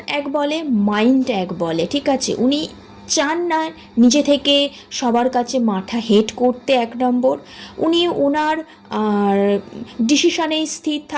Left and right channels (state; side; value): identical; both; correlation 1.00